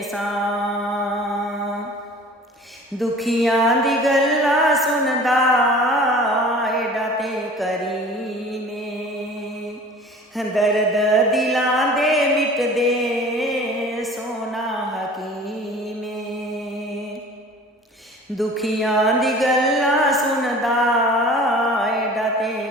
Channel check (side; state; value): both; normal; correlation 0.44